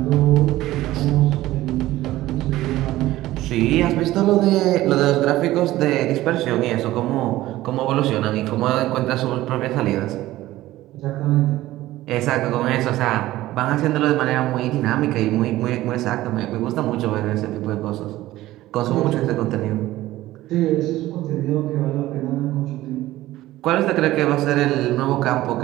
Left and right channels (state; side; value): quieter; left; 16.1 dB